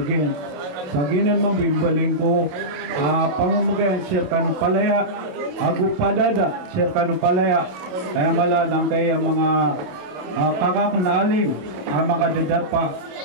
Sa ginan mambimbaling ko, pamumugayan, sir kanong palaya, agu padada, sir kanong palaya, kaya mala ng kaya mga kakak na alim, mga dadapa,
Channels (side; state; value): left; late; 27 ms